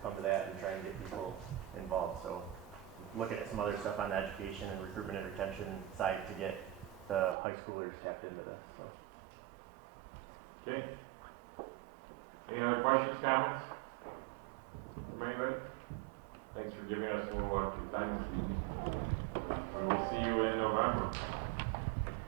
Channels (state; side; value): drops out; left; at 7.4 s